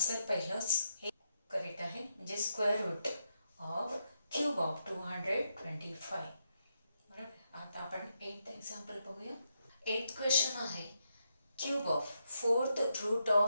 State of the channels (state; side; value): inverted; both; correlation -0.82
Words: पहिलंच हे करेक्ट आहे, म्हणजे square root of cube of 225. बरोबर. आता आपण 8th एक्झाम्पल बघूया. 8th क्वेश्चन आहे, cube of 4th root